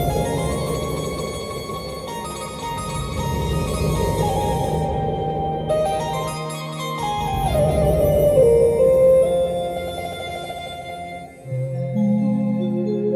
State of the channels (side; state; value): both; identical; correlation 1.00